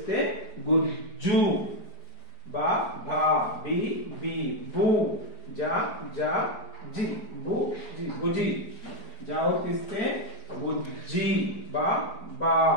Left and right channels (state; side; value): late; right; 4.8 ms